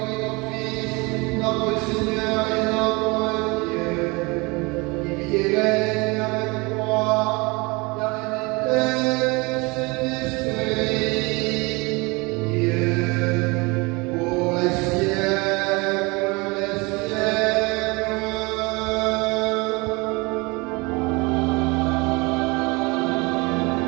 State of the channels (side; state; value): left; quieter; 26.2 dB